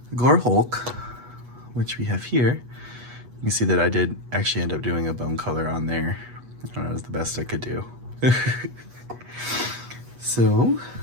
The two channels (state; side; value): late; left; 8.2 ms